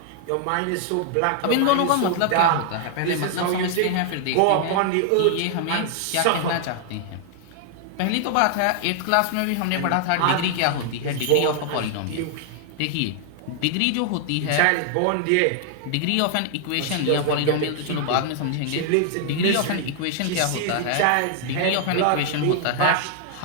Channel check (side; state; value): both; different; correlation 0.00